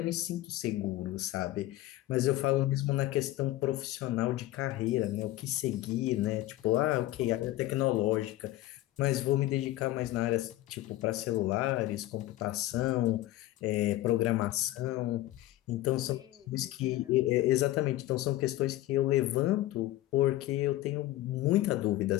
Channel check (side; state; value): right; quieter; 15.9 dB